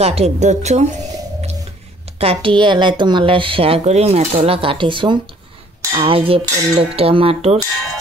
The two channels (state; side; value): normal; both; correlation 0.59